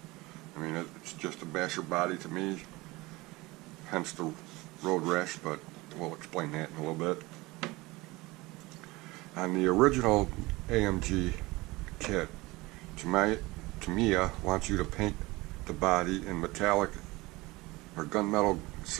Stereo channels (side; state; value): left; quieter; 21.8 dB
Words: I mean, it's just a basher body to me, hence the road rash, but we'll explain that in a little bit. On the original AMG kit, Tamiya wants you to paint the body in metallic or gunmetal